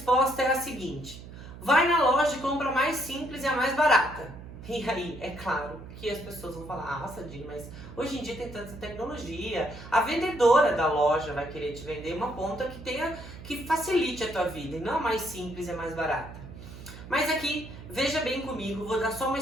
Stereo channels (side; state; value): right; noise; hum, 14 dB below the sound